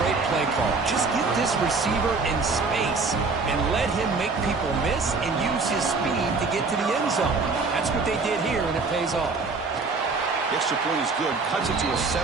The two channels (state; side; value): quieter; left; 4.1 dB